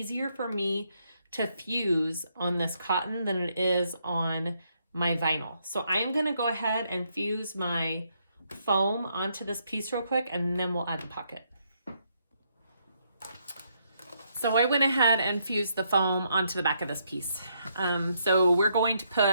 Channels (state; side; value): inverted; both; correlation -0.75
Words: for me to fuse on this cotton than it is on my vinyl. So I am going to go ahead and fuse my foam onto this piece real quick, and then we'll add the pocket. So I went ahead and fused the foam onto the back of this piece. So we're going to